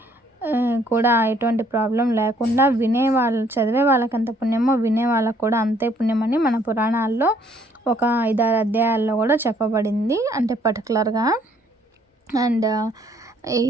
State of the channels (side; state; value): both; normal; correlation 0.64